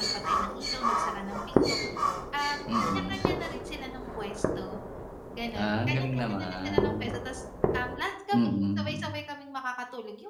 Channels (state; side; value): identical; both; correlation 1.00